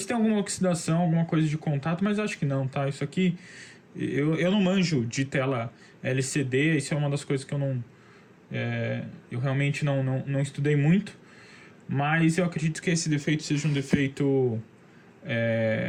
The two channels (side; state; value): both; identical; correlation 1.00